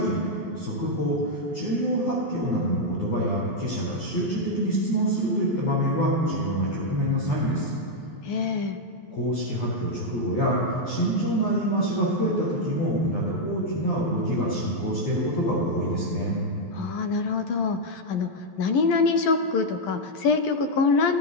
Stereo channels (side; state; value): right; late; 12 ms